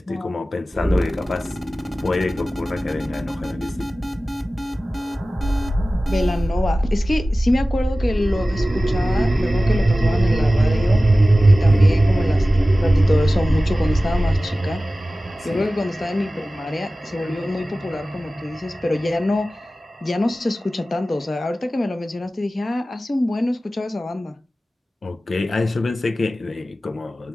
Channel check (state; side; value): normal; both; correlation 0.96